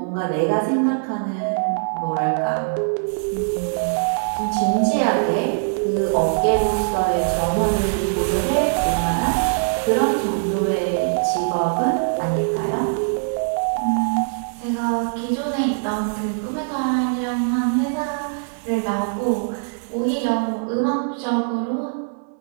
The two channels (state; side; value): silent; left; digital silence